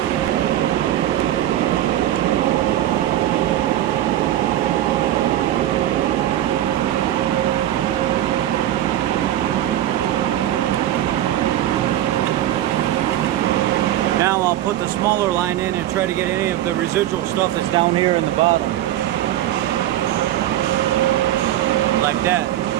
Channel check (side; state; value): left; quieter; 12.9 dB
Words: Now I'll put the smaller line in and try to get any of the residual stuff that's down here in the bottom. Like that.